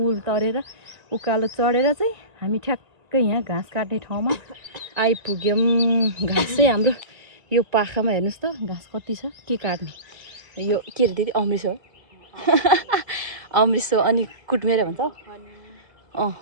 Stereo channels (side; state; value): left; late; 1.8 ms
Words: तरेर उकालो चढेर चाहिँ हामी ठ्याक्कै यहाँ घाँस काट्ने ठाउँमा आइपुग्यौँ। घाँस चाहिँ हाम्रो यो पाखामा हेर्नुहोस् त घाँस कति छ के काट्ने यो के अरे दिदी अमृत हो अमृत अनि कुटमेरे भन्छ